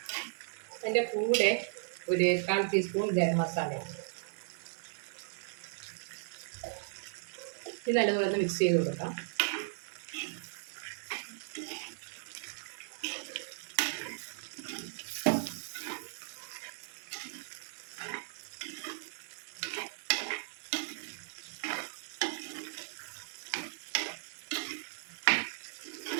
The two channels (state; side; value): silent; left; 54 dB below the other